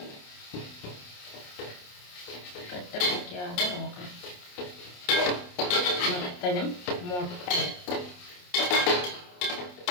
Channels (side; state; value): right; late; 28 ms